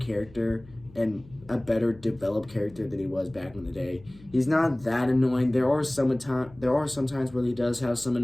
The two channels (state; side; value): noise; left; hum, 23 dB below the sound